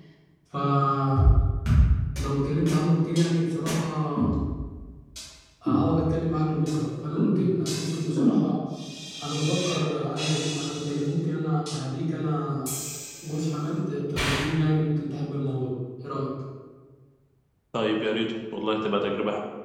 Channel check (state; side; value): identical; both; correlation 1.00